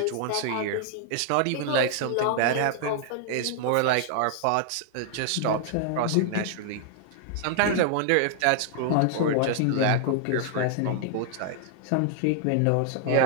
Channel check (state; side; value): different; both; correlation 0.00